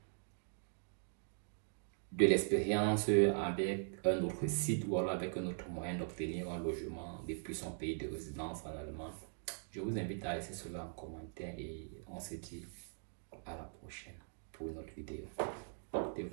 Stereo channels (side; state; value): left; silent; digital silence